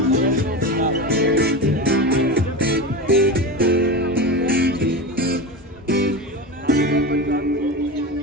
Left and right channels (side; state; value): both; normal; correlation 0.24